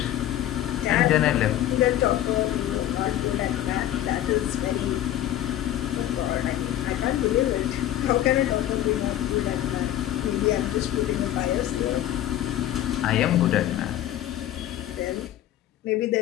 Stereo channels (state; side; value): quieter; right; 12.6 dB